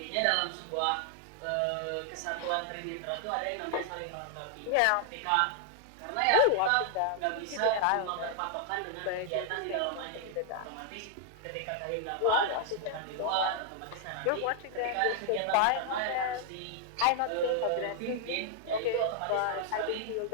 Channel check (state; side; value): different; both; correlation 0.00